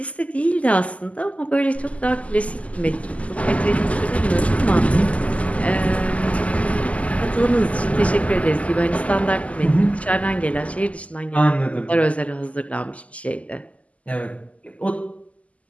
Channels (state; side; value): late; right; 0.068 ms